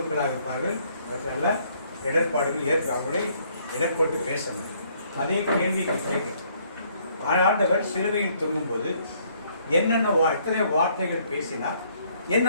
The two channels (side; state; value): both; inverted; correlation -0.65